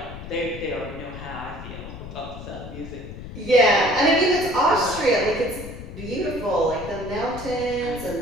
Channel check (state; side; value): noise; left; rumble, 11 dB below the sound